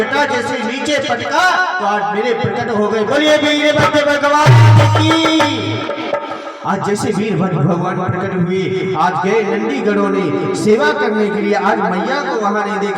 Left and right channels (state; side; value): identical; both; correlation 1.00